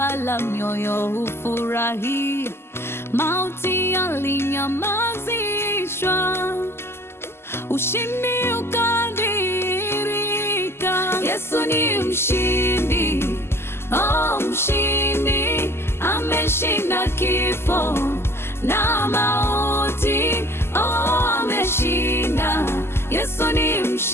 mioyo hufurahia. Mauti yalinyamazishwa, ushindi ukadirika. Yesu ni mshindi, oh mshindi, ameshinda kifo na mauti, oh ameshinda. Yesu ni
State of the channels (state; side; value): late; right; 0.12 ms